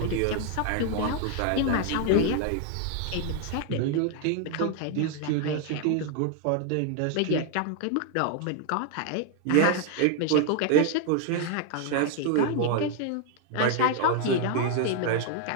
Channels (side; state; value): both; different; correlation 0.00